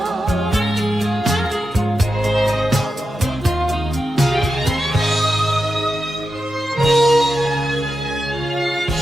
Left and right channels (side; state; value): both; normal; correlation 0.89